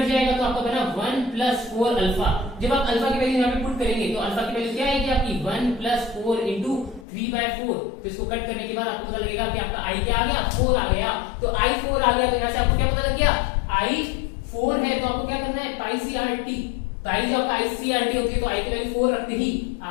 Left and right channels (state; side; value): drops out; right; at 7.1 s